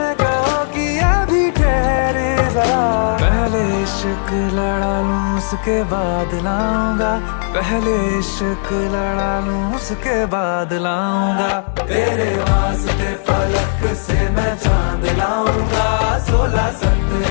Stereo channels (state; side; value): silent; right; 68 dB below the other